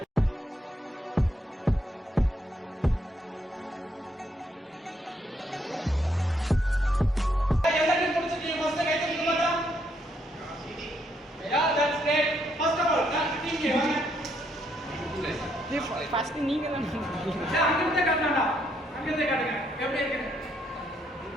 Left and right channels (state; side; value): normal; both; correlation 0.74